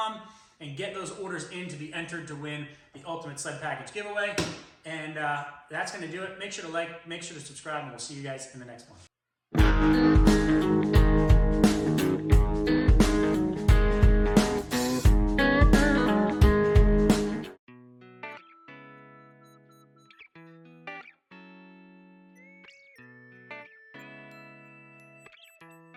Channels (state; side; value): identical; both; correlation 1.00